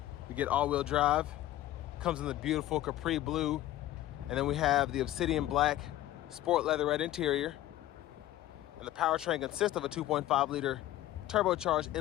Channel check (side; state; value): right; quieter; 14.4 dB